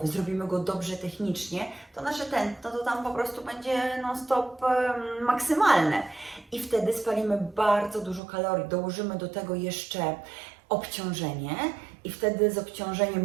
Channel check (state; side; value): drops out; left; at 8.2 s